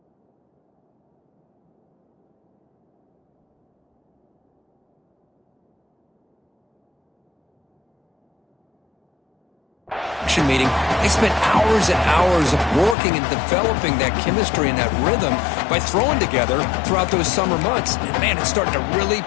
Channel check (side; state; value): right; drops out; at 13.0 s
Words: Meeting, they spent hours and hours of working and developing that chemistry and that rhythm by throwing together throughout those summer months. And man, it's starting to really